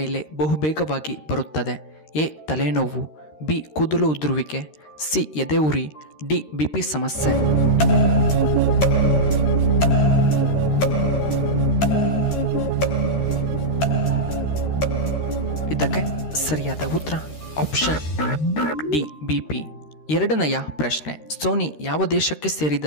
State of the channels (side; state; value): right; late; 13 ms